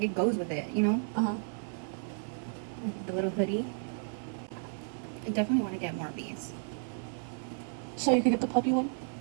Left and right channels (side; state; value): left; silent; 56 dB below the other